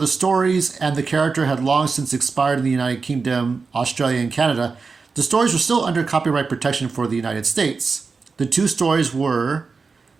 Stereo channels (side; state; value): left; quieter; 4.6 dB